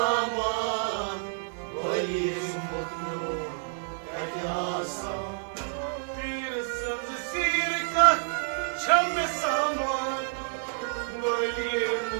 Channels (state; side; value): silent; left; 59 dB below the other